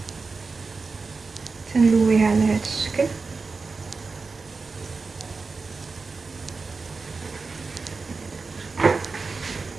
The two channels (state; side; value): quieter; left; 4.3 dB